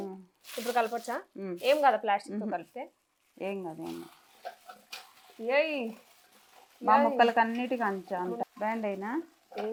ఇప్పుడు కలపొచ్చా? ఏం కదా ప్లాస్టిక్ తో కలిపితే ఏం కాదు. ఏయ్ మా ముక్కలకి అన్నిటికీ అంత బ్యాండ్ అయినా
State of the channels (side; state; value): both; identical; correlation 1.00